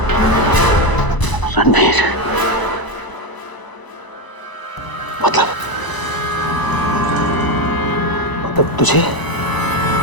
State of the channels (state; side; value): late; right; 1.0 ms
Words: रणवीर मतलब तुझे